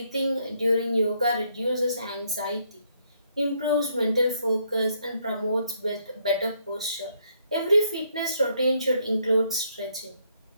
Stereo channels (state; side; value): inverted; both; correlation -0.72